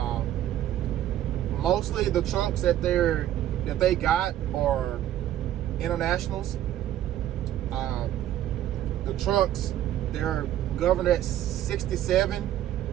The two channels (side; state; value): left; quieter; 12.3 dB